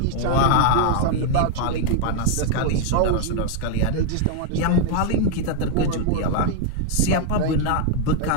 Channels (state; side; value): different; both; correlation 0.00